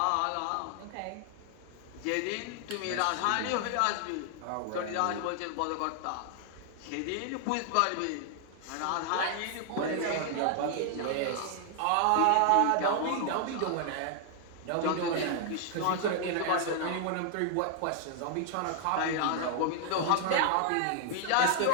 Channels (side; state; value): both; different; correlation 0.00